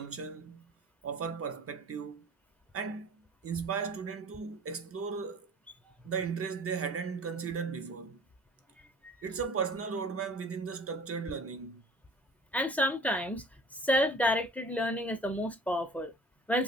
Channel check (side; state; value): both; normal; correlation 0.46